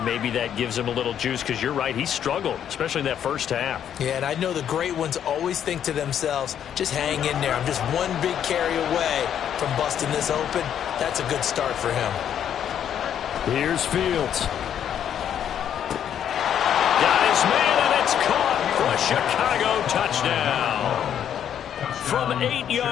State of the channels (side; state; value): right; quieter; 9.4 dB